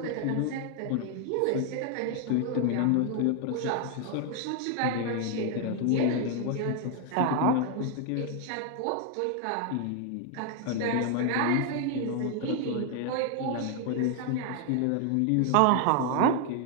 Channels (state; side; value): different; both; correlation 0.00